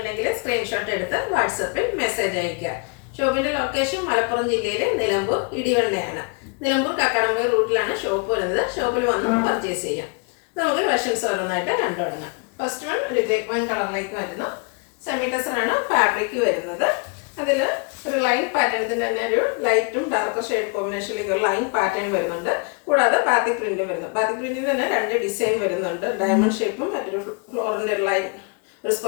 സ്ക്രീൻഷോട്ട് എടുത്ത് വാട്സപ്പിൽ മെസ്സേജ് അയയ്ക്കുക. ഷോപ്പിന്റെ ലൊക്കേഷൻ മലപ്പുറം ജില്ലയിലെ നിലമ്പൂർ ഇടിവണ്ണയാണ്. നിലമ്പൂർ കക്കാടംപൊയിൽ റൂട്ടിലാണ് ഷോപ്പ് വരുന്നത്. ഷോപ്പിൽ വന്ന് പർച്ചേസ് ചെയ്യാം. നമുക്ക് കളക്ഷൻസ് ഓരോന്നായിട്ട് കണ്ടു തുടങ്ങാം. ഫസ്റ്റ് വൺ ഒരു വൺ കളറിലേക്ക് വരുന്നു. സെമി ടെസർ ആണ് ഫാബ്രിക് വരുന്നത്. അതിൽ ഒരു ലൈൻ പാറ്റേൺ, ഇതിൻ്റെ തന്നെ ഒരു ലൈറ്റും ഡാർക്കർ ഷെയ്ഡ് കോമ്പിനേഷനിലേക്ക് ഒരു ലൈൻ പാറ്റേൺ വരുന്നുണ്ട്. കൂടാതെ ബാത്തിക് പ്രിന്റും വരുന്നു. ബാത്തിക് പ്രിന്റിൽ തന്നെ രണ്ട് ഡിസൈൻ വരുന്നുണ്ട്. ഡയമണ്ട് ഷേപ്പും മറ്റൊരു ഫ്ലോറിൻ്റെ ഒരു ലൈൻ, ഒരു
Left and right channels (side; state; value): right; quieter; 35.2 dB